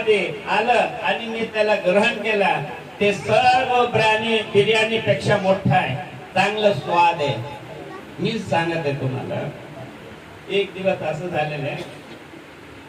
आलं आणि मी त्याला ग्रहण केला, ते सर्व बिर्याणी पेक्षा मोठा आहे, चांगलं स्वाद आहे. मी सांगत आहे तुम्हाला. एक दिवस असं झालेलं आहे,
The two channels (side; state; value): both; identical; correlation 1.00